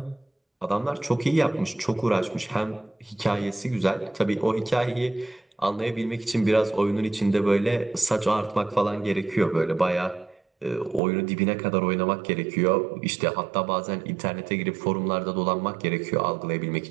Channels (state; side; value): drops out; left; at 11.0 s